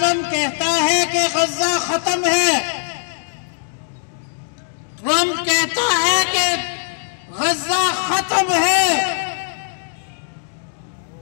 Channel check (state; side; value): silent; right; digital silence